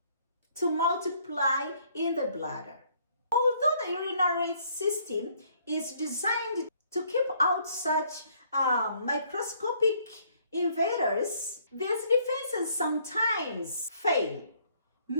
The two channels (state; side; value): inverted; both; correlation -0.64